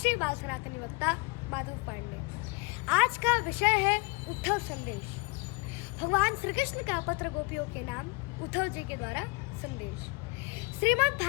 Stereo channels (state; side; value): quieter; right; 27.1 dB